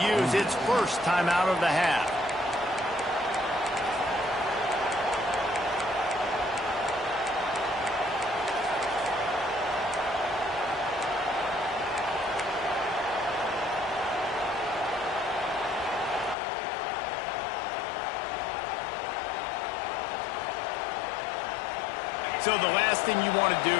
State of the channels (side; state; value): right; drops out; at 16.4 s